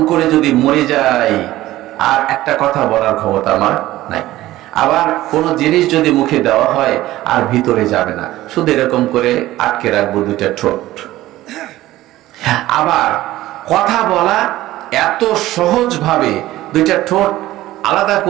করে যদি মরে যাই, আর একটা কথা বলার ক্ষমতা আমার নাই। আবার কোন জিনিস যদি মুখে দেওয়া হয়, আর ভিতরে যাবে না, শুধু এরকম করে আটকে রাখবো দুইটা ঠোঁট। আবার কথা বলা এত সহজ ভাবে, দুইটা ঠোঁট আলাদা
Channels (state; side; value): quieter; left; 15.9 dB